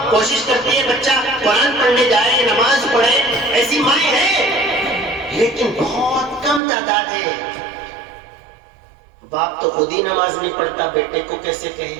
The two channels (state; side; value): drops out; left; at 6.6 s